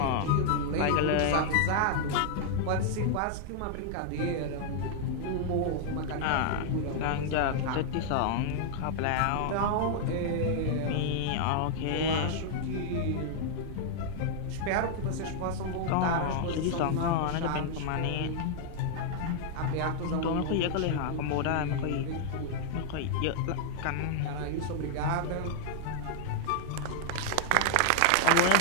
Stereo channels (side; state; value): both; different; correlation -0.01